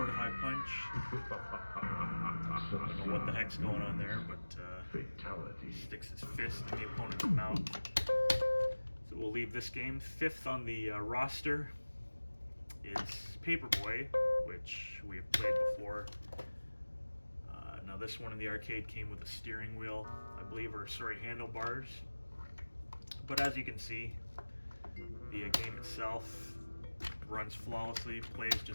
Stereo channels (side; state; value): both; inverted; correlation -1.00